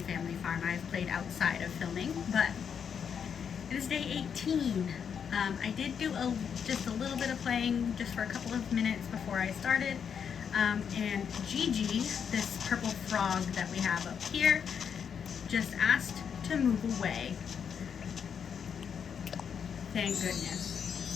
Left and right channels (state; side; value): quieter; right; 7.3 dB